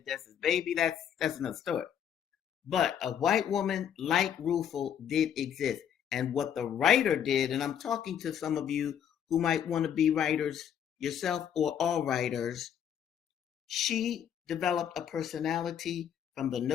Dessa's baby, that's another story. But a white woman like Rufel did exist. And what the writer did, and I'm talking to some of you who might want to be writers yourself or all writers, she developed a personality from the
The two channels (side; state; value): right; quieter; 9.0 dB